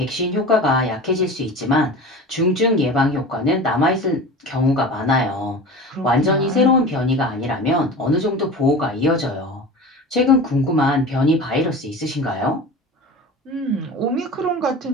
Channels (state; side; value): normal; both; correlation 0.33